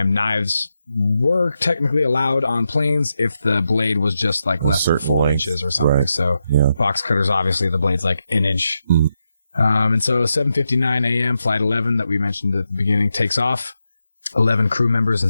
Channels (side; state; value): both; inverted; correlation -0.86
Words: knives were technically allowed on planes if the blade was just less than 4 inches or something. Right. So yeah. Box cutters, obviously the blade's an inch. Mm. And so 7:59 a.m. Flight 11 that we mentioned at the beginning takes off. 11 crew members